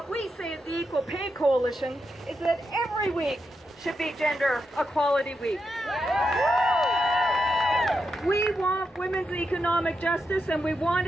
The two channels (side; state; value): both; normal; correlation 0.85